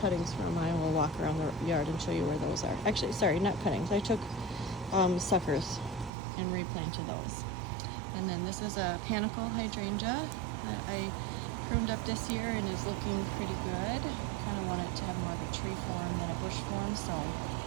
cuttings from. I will walk around the yard and show you where those are. Actually, sorry, not cuttings. I took suckers and replanted those. And then this is a panicle hydrangea that I pruned up this year and is looking pretty good. Kind of wanted it to have more of a tree form than a bush form, so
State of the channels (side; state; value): left; drops out; at 6.1 s